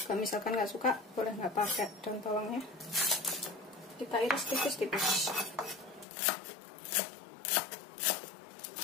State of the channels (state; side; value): drops out; right; at 6.1 s